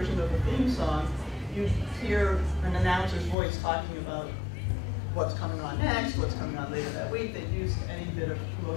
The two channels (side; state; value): right; drops out; at 3.4 s